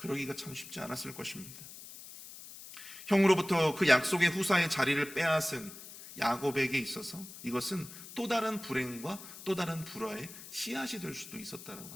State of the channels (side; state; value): left; noise; hiss, 14 dB below the sound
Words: 참 쉽지 않았을 것입니다. 형으로부터 그 약속의 후사의 자리를 빼앗은 야곱에게 있어서 이것은 또 다른 불행과 또 다른 불화의 씨앗이 될 수도 있었다라고